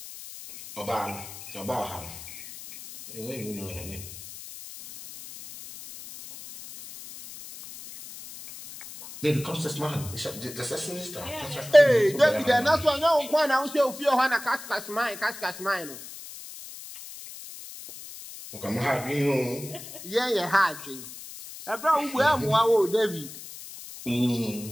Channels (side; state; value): left; noise; hiss, 13 dB below the sound